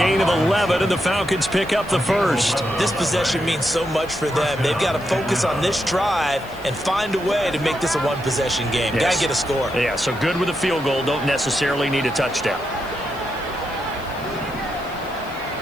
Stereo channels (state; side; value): noise; left; hiss, 23 dB below the sound